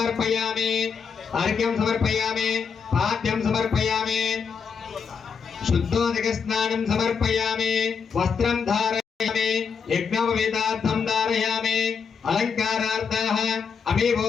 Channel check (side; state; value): right; quieter; 6.1 dB